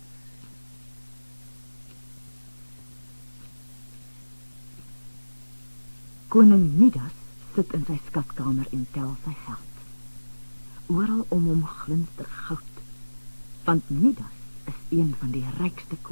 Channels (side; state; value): both; inverted; correlation -1.00